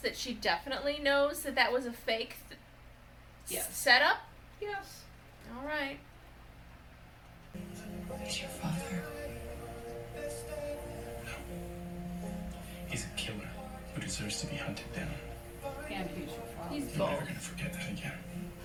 that she definitely knows that that was a fake Yes. setup? Yes. All right. He's your father. He's a killer who deserves to be hunted down. And he's your father. He's I'm both. never gonna forget that again.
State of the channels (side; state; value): both; identical; correlation 1.00